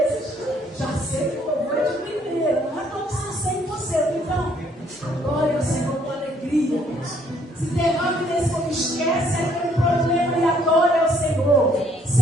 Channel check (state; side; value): normal; both; correlation 0.64